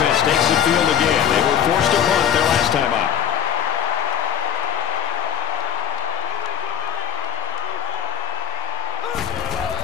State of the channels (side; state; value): right; quieter; 9.3 dB